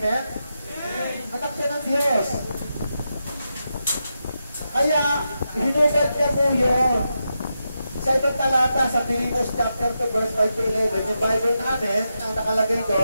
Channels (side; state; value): both; inverted; correlation -0.87